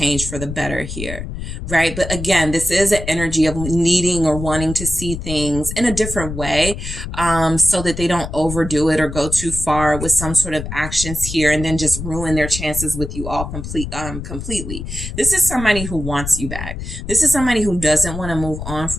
for the better here, right? But again, this is an energy of needing or wanting to see things in a different way, so that they don't overdo it or go too far with some sort of actions here and then just ruin their chances with you all completely. This is somebody who wants you back. This is somebody who doesn't want to move on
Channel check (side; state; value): left; noise; rumble, 7 dB below the sound